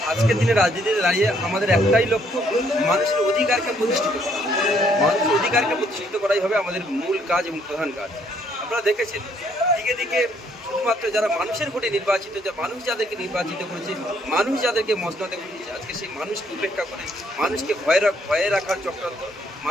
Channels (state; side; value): normal; both; correlation 0.68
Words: আজকের দিনে রাজনীতিতে দাঁড়িয়ে আমাদের একটাই লক্ষ্য, মানুষের অধিকারকে প্রতিষ্ঠিত করা। মানুষের অধিকারকে প্রতিষ্ঠিত করাই হবে আমাদের মূল কাজ এবং প্রধান কাজ। আপনারা দেখেছেন দিকে দিকে শুধুমাত্র যারা মানুষের ভোটে নির্বাচিত, যে মানুষ যাদেরকে নির্বাচিত করেছে, মানুষ যাদেরকে মসনদে বসিয়েছে, আজকে সেই মানুষকে উপেক্ষা করে মানুষকে ভয়ে রাখার চক্রান্ত,